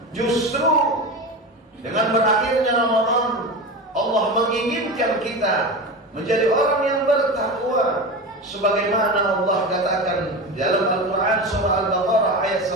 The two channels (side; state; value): both; normal; correlation 0.25